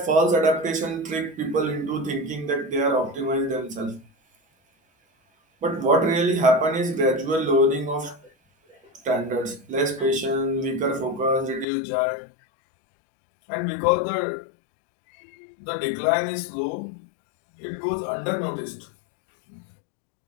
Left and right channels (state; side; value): drops out; right; at 11.7 s